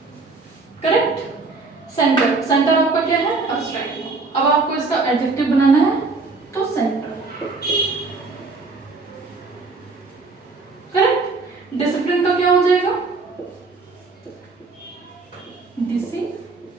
करेक्ट। सेंटर, सेंटर आपका क्या है? एब्स्ट्रैक्ट। अब आपको इसका एडजेक्टिव बनाना है तो सेंटर, करेक्ट। डिसिप्लिन का क्या हो जाएगा? डिसिप्लिनरी,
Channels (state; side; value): quieter; left; 3.9 dB